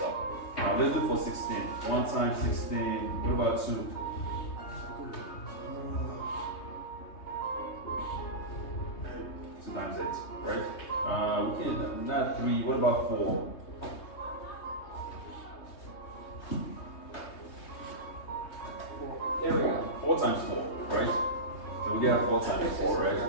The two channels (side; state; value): right; late; 3.2 ms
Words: Let's do for 16. 1 times 16. What about 2? 2 times 8, right? We can not 3. What about 4? 4 times 4, right? So we got 4 times 4, right?